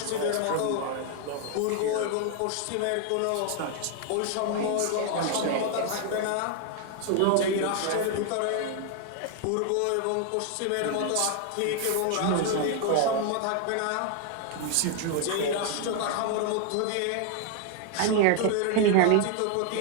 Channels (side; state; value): both; different; correlation 0.00